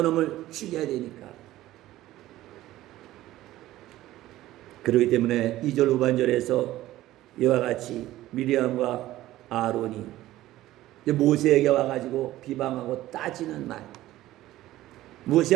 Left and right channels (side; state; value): left; quieter; 15.4 dB